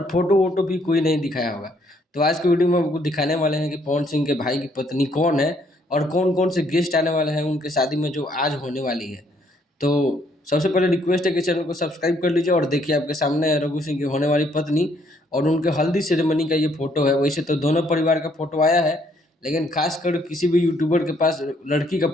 फोटो वोटो भी कोई नहीं दिखाया होगा। तो आज की वीडियो में आपको दिखाने वाले हैं कि पवन सिंह के भाई की पत्नी कौन है और कौन कौन से गेस्ट आने वाले हैं उनके शादी में जो आज होने वाली है। तो सबसे पहले रिक्वेस्ट है कि चैनल को सब्सक्राइब कर लीजिए और देखिए आपके सामने है रघु सिंह की होने वाली पत्नी और उनके हल्दी सेरेमनी का ये फोटो है। वैसे तो दोनों परिवार का फोटो आया है लेकिन खासकर किसी भी यूट्यूबर के पास लड़की का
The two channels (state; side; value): normal; both; correlation 0.68